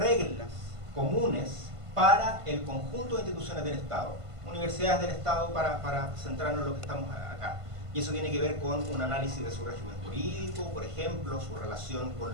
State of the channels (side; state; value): left; late; 1.5 ms